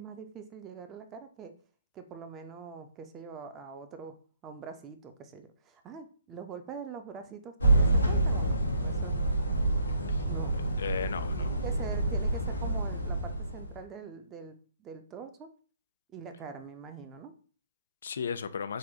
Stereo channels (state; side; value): inverted; both; correlation -0.67